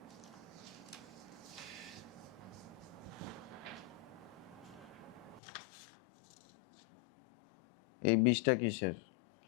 এই 20টা কিসের?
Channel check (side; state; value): right; drops out; at 5.4 s